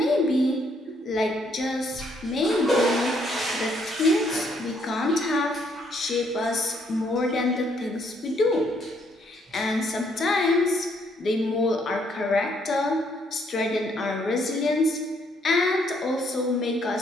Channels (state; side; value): normal; both; correlation 0.70